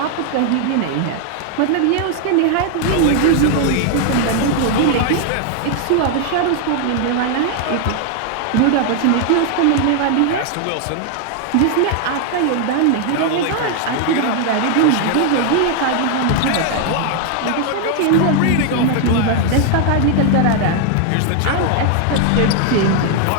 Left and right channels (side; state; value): both; different; correlation 0.00